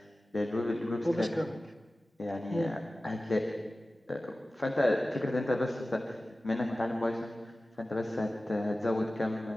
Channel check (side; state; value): both; normal; correlation 0.96